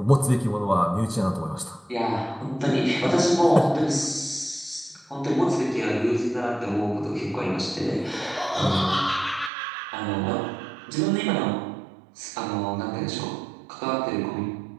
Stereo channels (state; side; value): drops out; left; at 9.5 s